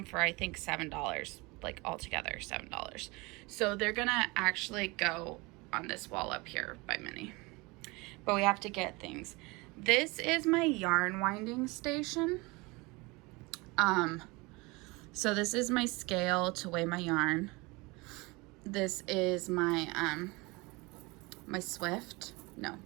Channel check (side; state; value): left; quieter; 25.1 dB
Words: for I think $7, like altogether $7. So they're gonna actually go on this wall up here by Minnie, but we have to get things. This is my yarn winding station. So this is my scale to weigh my yarn. This is my my Swift. No,